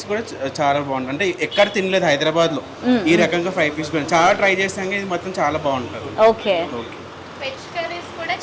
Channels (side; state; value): both; identical; correlation 1.00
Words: కూడా చాలా బాగుంటుంది. అంటే ఎక్కడ తినలేదు హైదరాబాద్లో ఈ రకంగా 5 పీస్ బిర్యానీ, చాలా ట్రై చేసాక ఇది మొత్తం చాలా బాగుంటుంది. ఓకే. వెజ్ కర్రీస్ కూడా